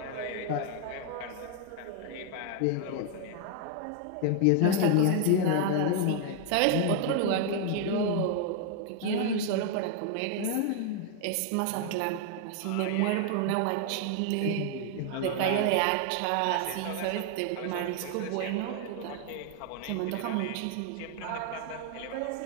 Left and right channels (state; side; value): different; both; correlation 0.00